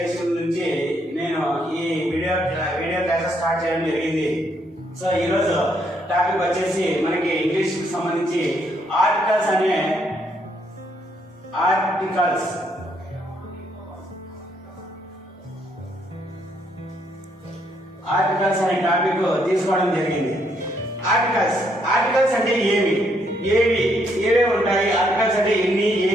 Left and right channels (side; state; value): both; normal; correlation 0.72